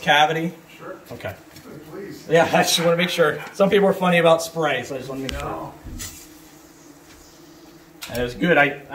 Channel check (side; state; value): both; identical; correlation 1.00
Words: Sure. Okay. Please. Yeah, I just want to make sure. Some people are funny about spray, so I just want to make sure. And it was good. I